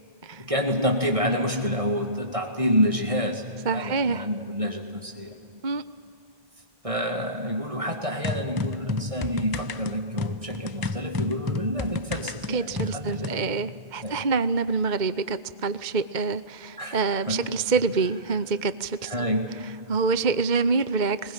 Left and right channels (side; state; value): left; late; 2.1 ms